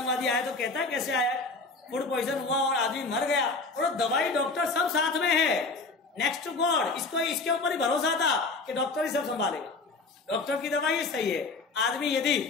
आए तो कहता है कैसे आया है, फूड पॉइजन हुआ और आदमी मर गया, और दवाई डॉक्टर सब साथ में है, नेक्स्ट टू गॉड। इसको इसके ऊपर ही भरोसा था कि डॉक्टर ही सब संभालेगा, डॉक्टर की दवाई सही है। आदमी यदि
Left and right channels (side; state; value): right; quieter; 3.8 dB